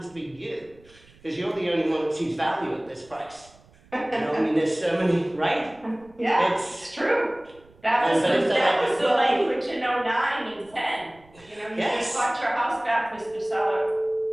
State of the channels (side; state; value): right; noise; rumble, 28 dB below the sound